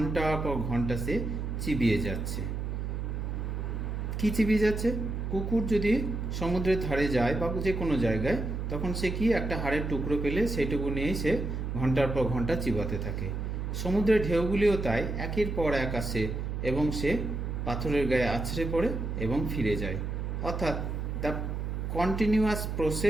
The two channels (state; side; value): noise; right; hum, 3 dB below the sound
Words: পর ঘন্টা সে চিবিয়ে যাচ্ছে। কি চিবিয়ে যাচ্ছে? কুকুর যদি সমুদ্রের ধারে যায় বা যে কোনো জায়গায়, তখন সে কি একটা হাড়ের টুকরো পেলে সেইটুকু নিয়েই সে ঘন্টার পর ঘন্টা চিবাতে থাকে। সমুদ্রের ঢেউগুলিও তাই একের পর এক আসে এবং সে পাথরের গায়ে আছড়ে পড়ে এবং ফিরে যায়। অর্থাৎ the continuous